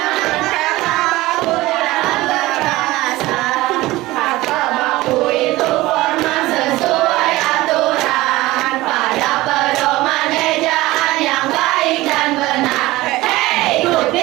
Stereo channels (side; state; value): left; quieter; 18.7 dB